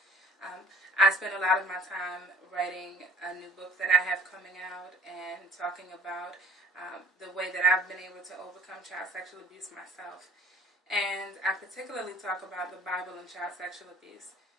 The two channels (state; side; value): normal; both; correlation 0.52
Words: I spend a lot of my time writing a new book that I have coming out and talking about the way that I've been able to overcome child sexual abuse myself. And I particularly talk about the Bible and child sexual abuse.